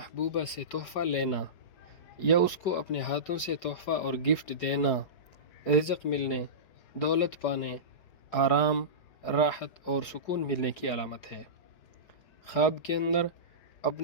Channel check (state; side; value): late; right; 4.6 ms